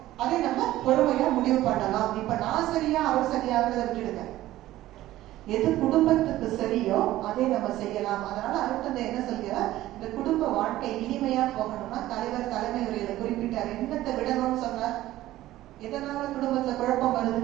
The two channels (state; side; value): quieter; left; 15.2 dB